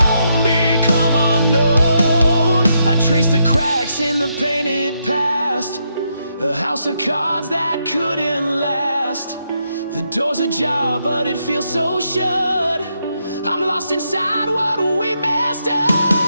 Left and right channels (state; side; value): inverted; both; correlation -0.79